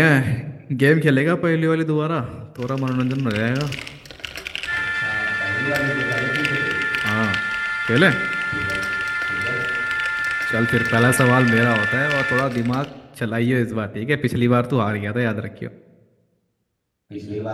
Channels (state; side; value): identical; both; correlation 1.00